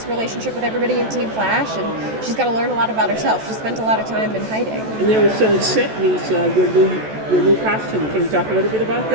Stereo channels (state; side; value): late; left; 14 ms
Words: relationship with everybody in Team Flash, and she's got to learn a lot about herself. She spent a lot of time in hiding. And there was some set meets, your new costume. Can you talk a little bit about